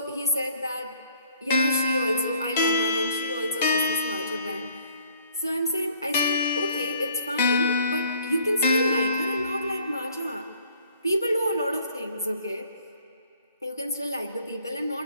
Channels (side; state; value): both; inverted; correlation -0.59